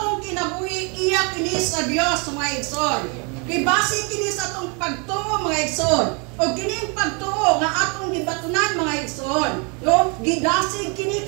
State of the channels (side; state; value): left; quieter; 33.6 dB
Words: kinabuhi iya kini sa Dios mga igsoon. Gibase kini sa atong pagtuo mga igsoon. O kining pagtuo nga atong gibatunan mga igsoon. No? Gidasig kini